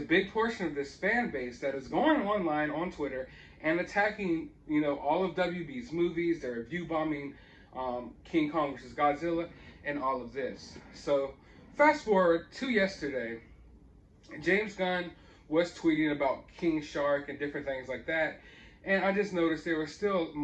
portion of this fan base that is going online on Twitter and attacking, all of WB's movies. They're review bombing King Kong vs. Godzilla and all of this. So fast forward to yesterday, James Gunn was tweeting about King Shark and different things like that. And I just noticed there was still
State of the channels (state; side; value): identical; both; correlation 1.00